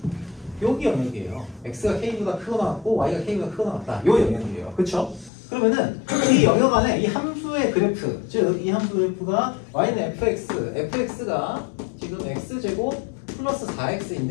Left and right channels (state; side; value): drops out; right; at 5.3 s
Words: 여기 영역이에요. X가 K보다 크거나 같고 Y가 K보다 크거나 같다. 요 영역이에요. 그렇죠? 그러면은 이 영역 안에 이 함수의 그래프, 즉 이 함수 그래프가 y는 fx가 지금 x제곱 플러스